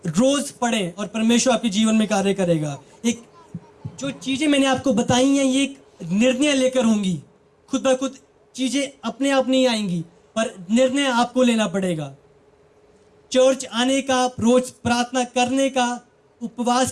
रोज पढ़ें और परमेश्वर आपके जीवन में कार्य करेगा। एक जो चीजें मैंने आपको बताई हैं, ये एक निर्णय लेकर होंगी। खुद ब खुद चीजें अपने आप नहीं आएंगी, पर निर्णय आपको लेना पड़ेगा। चर्च आने का, रोज प्रार्थना करने का,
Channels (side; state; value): both; identical; correlation 1.00